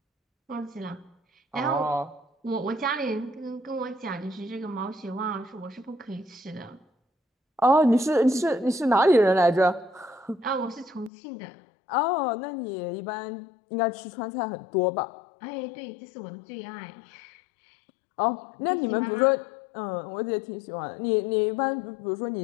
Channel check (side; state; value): right; drops out; at 11.1 s